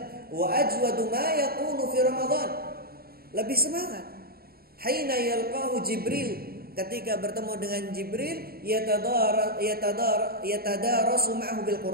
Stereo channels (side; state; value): left; late; 0.44 ms